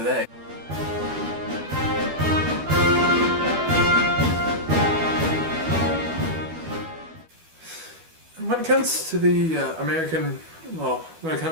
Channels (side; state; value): left; late; 12 ms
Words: it comes to the when it